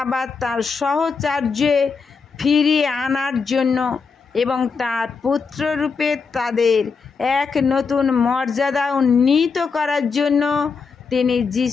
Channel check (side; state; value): right; quieter; 5.2 dB